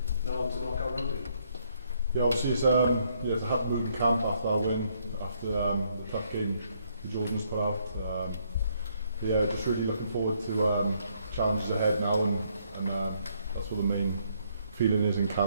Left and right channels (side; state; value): both; inverted; correlation -0.71